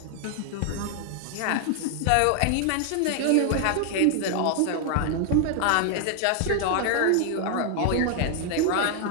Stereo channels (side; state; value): both; different; correlation 0.00